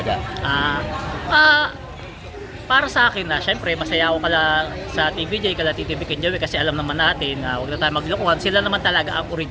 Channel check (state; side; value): identical; both; correlation 1.00